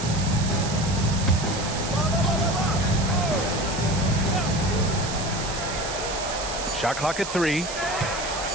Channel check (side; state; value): right; noise; hiss, 8 dB below the sound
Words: Shot clock at 3.